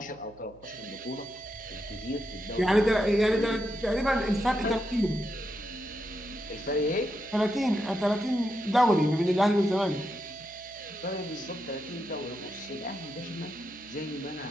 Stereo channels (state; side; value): noise; right; hum, 25 dB below the sound